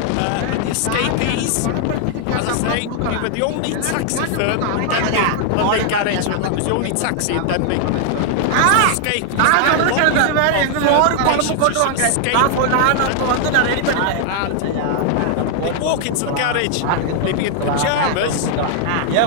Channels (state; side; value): different; both; correlation 0.00